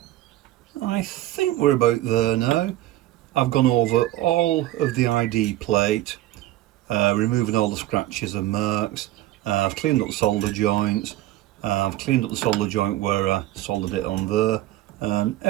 I think we're about there now. I've gone over all of the ID plate, removing all the scratches and marks. I've cleaned up the solder joints. I've cleaned up the solder joint where I soldered it on there, and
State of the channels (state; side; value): quieter; left; 15.3 dB